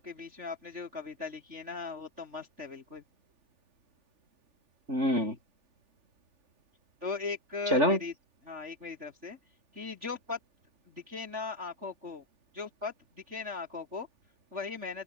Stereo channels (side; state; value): left; late; 3.4 ms